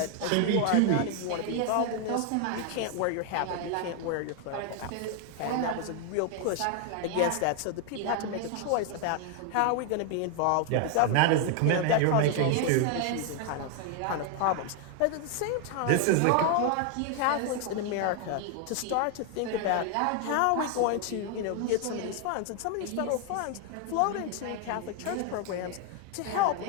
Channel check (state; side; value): different; both; correlation 0.00